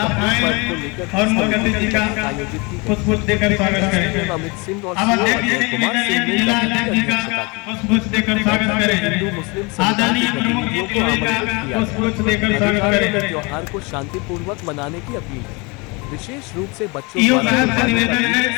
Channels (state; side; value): quieter; right; 28.3 dB